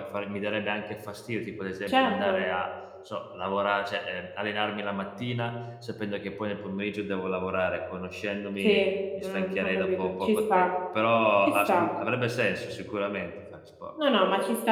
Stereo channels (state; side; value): identical; both; correlation 1.00